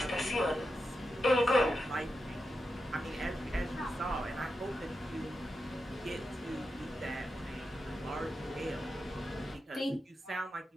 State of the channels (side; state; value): both; normal; correlation 0.88